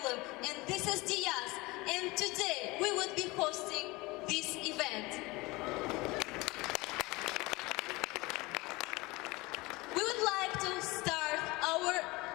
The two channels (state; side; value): quieter; right; 22.8 dB